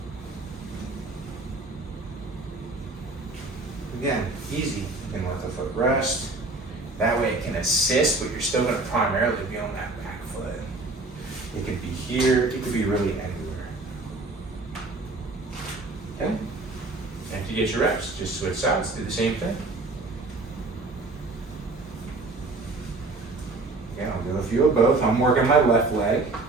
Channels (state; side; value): quieter; left; 3.2 dB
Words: Again, easy. You can let the foot rest. That way it can assist, but you're still going to primarily be on that back foot. It could be here, it could be really anywhere. Okay? And if you get your reps, just switch sides, do the same thing. Okay, I'll do a few of both. I'm working my left leg,